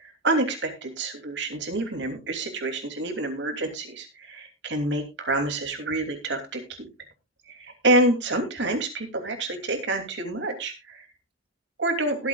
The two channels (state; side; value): normal; both; correlation 0.03